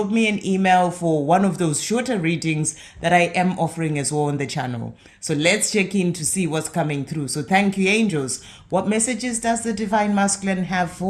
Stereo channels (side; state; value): both; identical; correlation 1.00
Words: me an email for one of those shorter readings that I am offering as well on the channel. So let's check in to see what's coming through. So thank you, angels. What messages does the Divine Masculine have